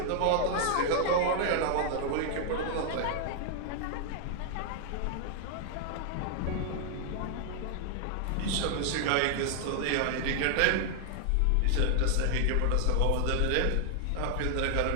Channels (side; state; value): both; different; correlation 0.00